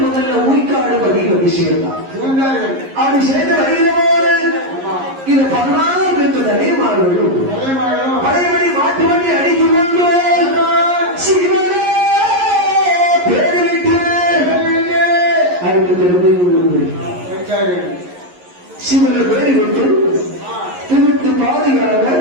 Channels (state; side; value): late; left; 11 ms